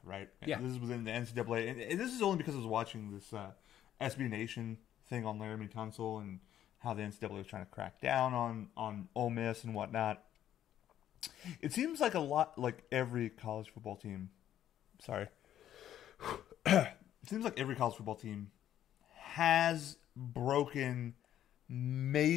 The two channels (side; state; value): right; quieter; 11.2 dB